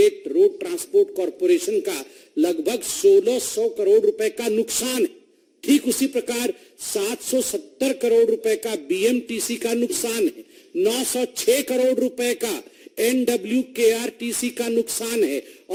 road transport corporation का लगभग 1600 करोड़ रुपए का नुकसान है। ठीक उसी प्रकार 770 करोड़ रुपए का BMTC का नुकसान है। 906 करोड़ रुपए का NWKRTC का नुकसान है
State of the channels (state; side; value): identical; both; correlation 1.00